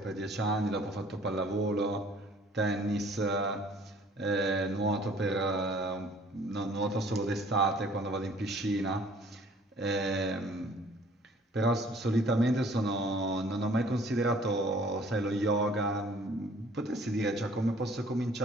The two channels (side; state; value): both; normal; correlation 0.55